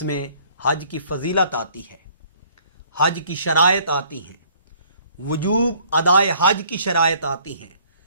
میں حج کی فضیلت آتی ہے، حج کی شرائط آتی ہیں، وجوب ادائے حج کی شرائط آتی ہیں،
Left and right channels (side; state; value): both; inverted; correlation -0.59